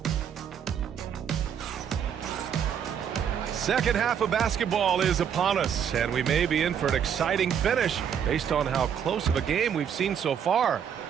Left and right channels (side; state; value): left; quieter; 8.3 dB